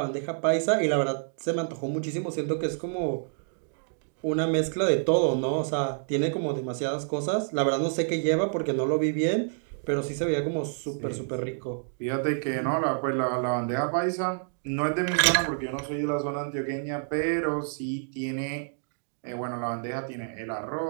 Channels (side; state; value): left; silent; digital silence